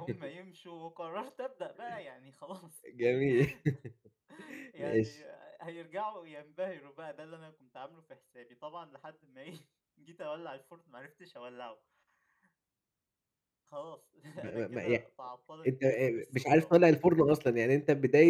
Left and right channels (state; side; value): identical; both; correlation 1.00